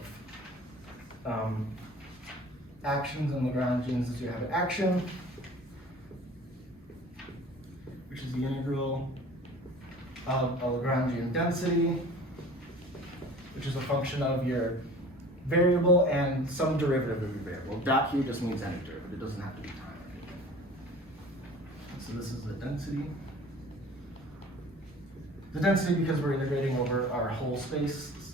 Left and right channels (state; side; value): normal; both; correlation 0.43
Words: actions and Lagrangians is you have an action, which is the integral of a Lagrangian density, which is a function of your variable and some derivative of your variable. Dot here just means any derivative, it doesn't have to be time or anything. So this is the density. The density because we're integrating over our whole space, this is